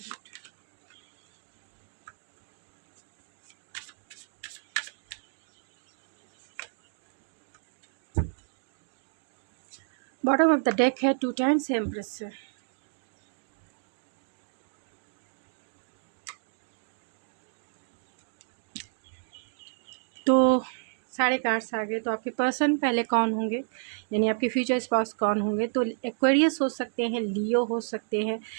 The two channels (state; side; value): silent; left; digital silence